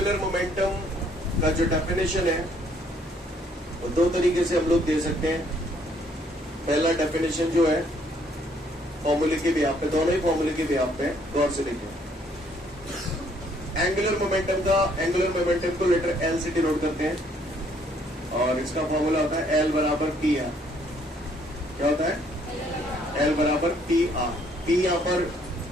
मोमेंटम का जो डेफिनेशन है वो दो तरीके से हम लोग दे सकते हैं। पहला डेफिनेशन जो है फॉर्मूले के भी आप पे, दोनों ही फॉर्मूले के भी आप पे गौर से देखिए। एंगुलर मोमेंटम को लेटर एल से डिनोट करते हैं और इसका फॉर्मूला होता है एल बराबर पी आर। क्या होता है? एल बराबर पी आर। पी यहाँ पर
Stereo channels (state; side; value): normal; both; correlation 0.65